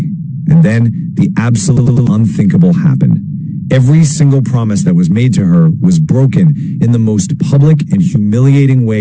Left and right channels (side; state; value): both; identical; correlation 1.00